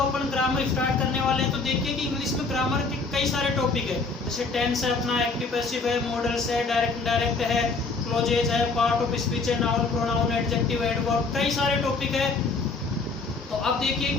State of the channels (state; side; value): quieter; right; 4.0 dB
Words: ग्रामर स्टार्ट करने वाले हैं, तो देखिए कि इंग्लिश में ग्रामर के कई सारे टॉपिक है। जैसे टेंस है, अपना एक्टिव पैसिव है, मॉडल्स है, डायरेक्ट इनडायरेक्ट है, क्लोजेज है, पार्ट ऑफ स्पीच है, नाउन प्रोनाउन एडजेक्टिव एडवर्ब, कई सारे टॉपिक है। तो अब देखिए